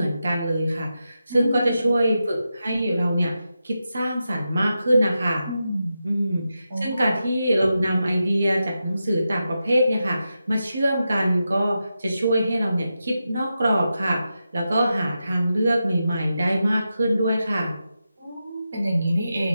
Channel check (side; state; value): both; inverted; correlation -0.89